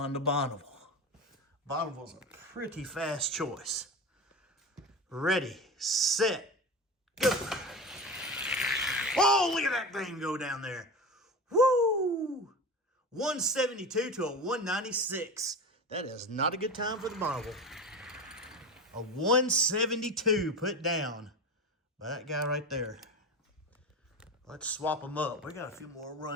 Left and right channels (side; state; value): both; normal; correlation 0.27